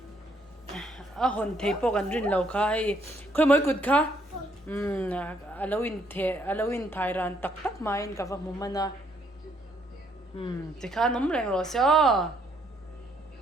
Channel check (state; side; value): normal; both; correlation 0.69